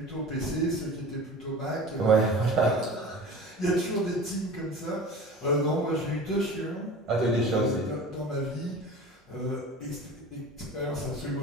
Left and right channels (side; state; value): both; normal; correlation 0.37